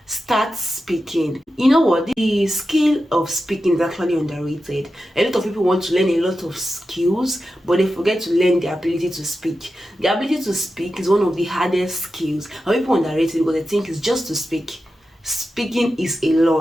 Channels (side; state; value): both; normal; correlation 0.91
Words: Start speaking. You know what, the skill of speaking is actually underrated. A lot of people want to learn a lot of skills, but they forget to learn the ability to speak. The ability to speak is one of the hardest skills, and people underrate it because they think it's just to speak. Speaking is